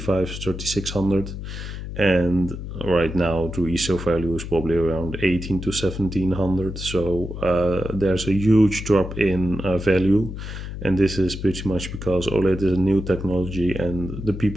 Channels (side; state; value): left; noise; hum, 8 dB below the sound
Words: and right now the resale value is probably around 18 to 1700. So there's a huge drop in value, and this is pretty much because OLED is a new technology, and the